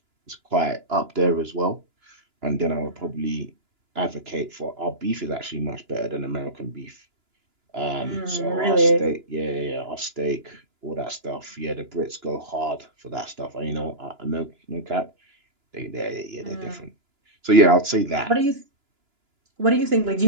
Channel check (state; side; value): late; left; 2.9 ms